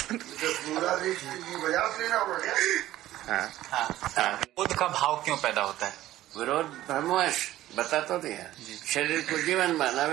विरोध का भाव क्यों पैदा होता है? विरोध भ्रमवश बता तो दिया। शरीर को जीवन माना,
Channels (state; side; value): quieter; left; 14.6 dB